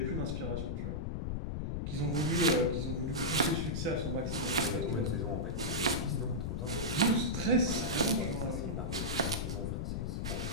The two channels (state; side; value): noise; left; rumble, 2 dB below the sound